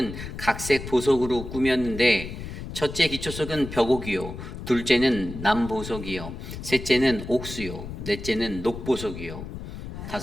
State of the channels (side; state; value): left; noise; rumble, 9 dB below the sound